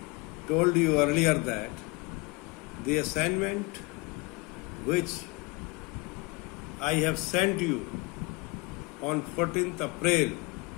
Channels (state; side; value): quieter; right; 25.6 dB